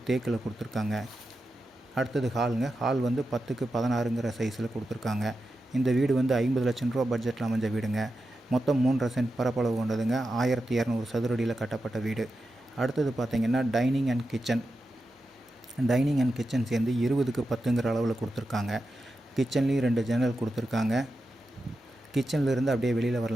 தேக்கில் கொடுத்துருக்காங்க. அடுத்தது ஹாலுங்க. ஹால் வந்து 10க்கு 16ங்கிற சைஸில் கொடுத்துருக்காங்க. இந்த வீடு வந்து 50 லட்சம் ரூபா பட்ஜெட்டில் அமைஞ்ச வீடுங்க. மொத்தம் 3.5 சென்ட் பரப்பளவு கொண்டதுங்க. 1200 சதுரடியில் கட்டப்பட்ட வீடு. அடுத்தது பார்த்திங்கன்னா டைனிங் அண்ட் கிச்சன் சேர்ந்து 20க்கு 10ங்கிற அளவில் கொடுத்துருக்காங்க. கிச்சன்லேயும் 2 ஜன்னல் கொடுத்துருக்காங்க. கிச்சன்லேருந்து அப்படியே வெளியில்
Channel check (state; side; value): normal; both; correlation 0.90